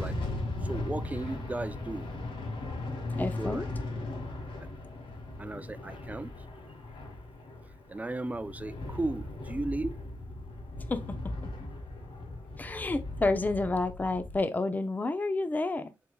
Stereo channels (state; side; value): normal; both; correlation 0.88